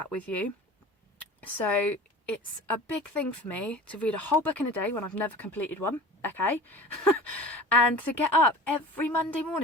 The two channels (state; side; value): normal; both; correlation 0.39